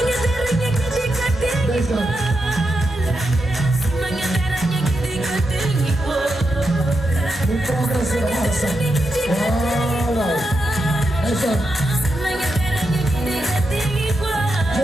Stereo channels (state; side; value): normal; both; correlation 0.86